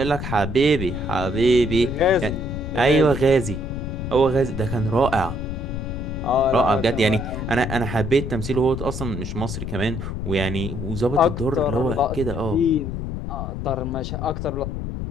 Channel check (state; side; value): noise; left; rumble, 5 dB below the sound